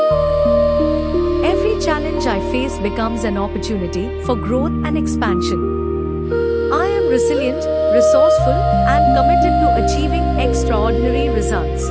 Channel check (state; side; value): identical; both; correlation 1.00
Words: Every challenge I face becomes an opportunity for growth and expansion. I am resilient, resourceful, and committed to achieving extraordinary